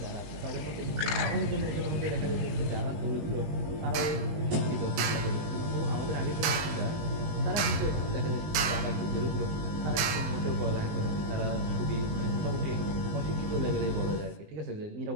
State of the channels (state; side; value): late; left; 20 ms